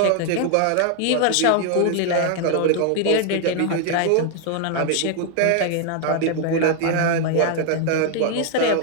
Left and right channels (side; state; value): both; different; correlation 0.00